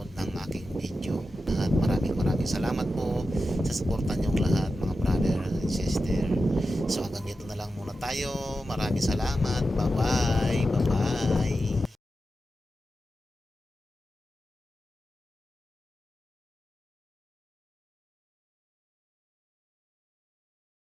ng aking video. Lahat, maraming salamat po sa suporta niyong lahat mga brother and sister. So hanggang dito na lang muna tayo. Maraming salamat, bye bye.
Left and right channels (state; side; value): normal; both; correlation 0.91